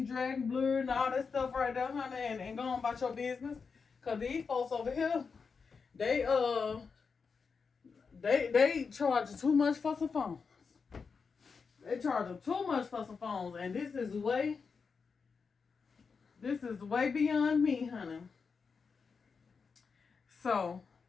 dragging, blurred, and all that stuff right there, honey, and go on about your business. Cause these folks over here, they charge too much for some phones. They charge too much for some phones, and this is way beyond me, honey. So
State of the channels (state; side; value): quieter; right; 5.3 dB